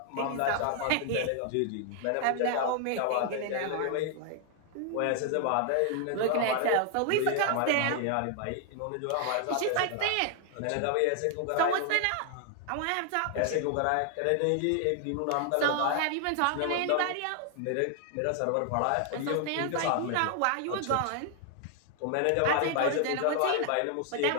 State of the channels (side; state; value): both; different; correlation 0.00